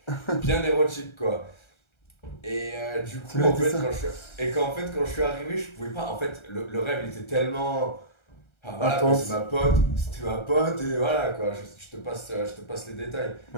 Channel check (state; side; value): late; right; 1.3 ms